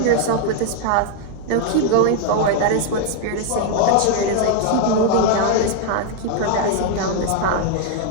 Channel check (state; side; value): different; both; correlation 0.00